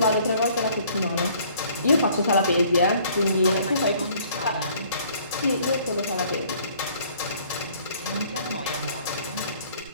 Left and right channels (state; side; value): inverted; both; correlation -0.58